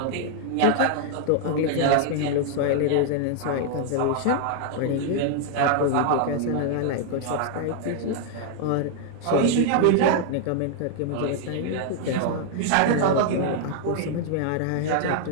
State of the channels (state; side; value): different; both; correlation 0.00